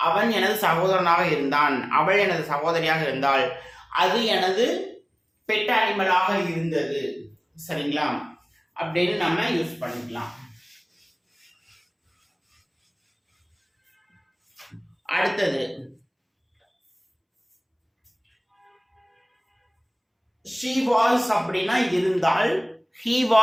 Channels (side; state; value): both; identical; correlation 1.00